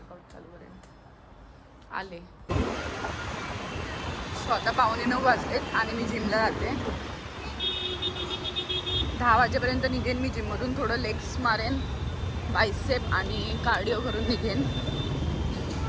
चालू करेन. आले. स्वतः 8:45 वाजलेत आणि मी जिमला जाते. 10 वाजेपर्यंत निघेन मी जिममधून. थोडं लेग्स मारेन, बायसेप आणि कार्डिओ करून निघेन.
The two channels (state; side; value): identical; both; correlation 1.00